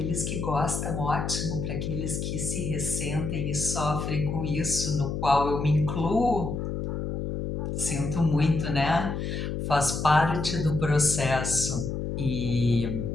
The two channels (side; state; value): left; noise; hum, 3 dB below the sound